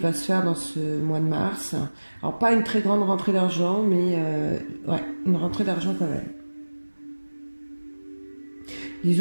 se faire dans ce mois de mars. Alors pas une très grande rentrée d'argent, mais ouais, une rentrée d'argent quand même.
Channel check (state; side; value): inverted; both; correlation -1.00